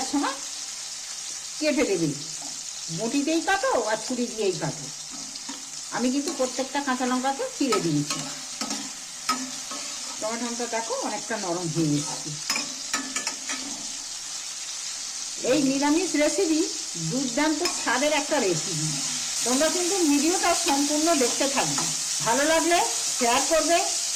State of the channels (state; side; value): identical; both; correlation 1.00